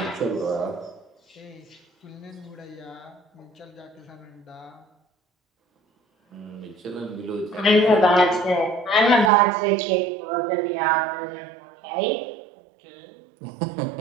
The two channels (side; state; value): left; drops out; at 9.3 s